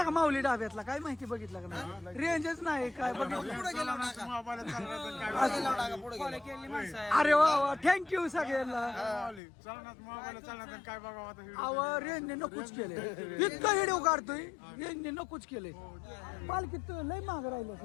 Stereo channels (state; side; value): drops out; right; at 9.4 s